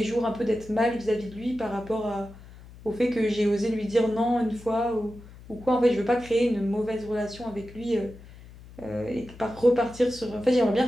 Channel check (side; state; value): left; noise; hum, 19 dB below the sound